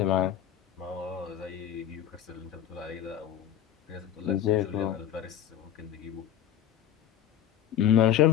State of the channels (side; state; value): right; quieter; 10.5 dB